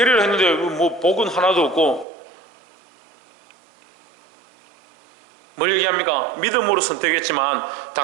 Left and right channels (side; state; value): left; drops out; at 2.1 s